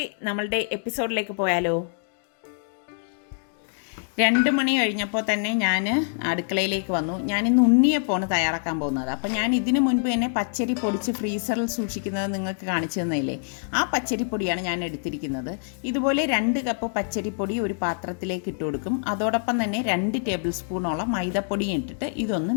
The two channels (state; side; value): silent; right; digital silence